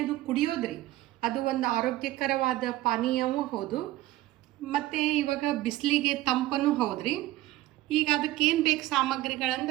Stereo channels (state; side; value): quieter; left; 16.3 dB